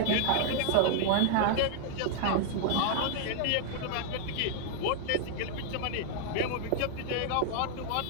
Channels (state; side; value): different; both; correlation -0.01